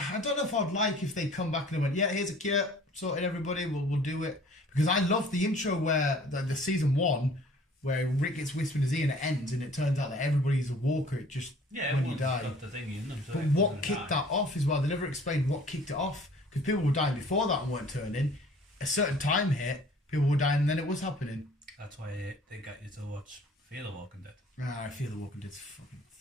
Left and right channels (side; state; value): both; normal; correlation 0.51